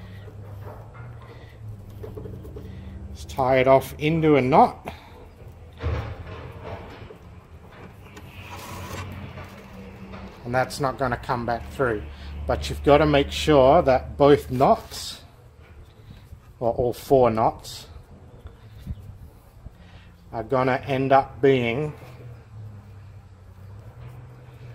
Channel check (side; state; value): both; identical; correlation 1.00